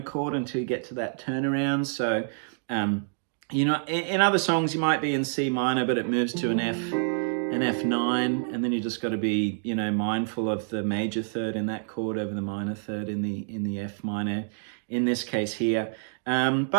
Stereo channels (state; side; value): silent; left; digital silence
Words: chord until you get to that turnaround. So, in other songs you might be in C minor, but it moves to an F9, and then you just got to be, mindful of the major 3rd in that chord over the minor 3rd in the F minor, in this case here.